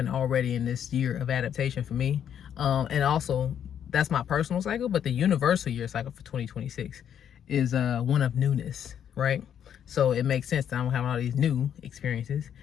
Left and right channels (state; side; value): quieter; right; 9.1 dB